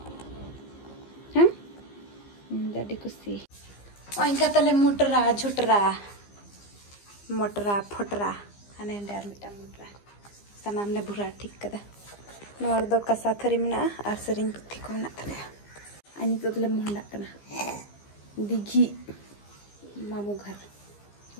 हाँ दादी कुसी और इनका तले मोटरा झुटरा मोटरा फुटरा अने डार मिटा मोटरा सनाम ने बुरा ठीक कदा नोर दो कसा थरी मिना और सरिंग पुथी को मिना तले अनि तो तले मोहंडा कना दिघी मामू घर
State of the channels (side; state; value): right; late; 15 ms